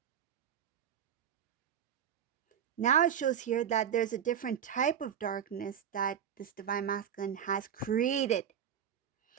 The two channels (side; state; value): left; quieter; 8.8 dB